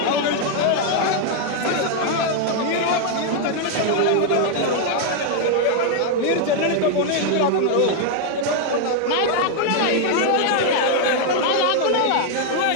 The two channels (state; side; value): different; both; correlation 0.00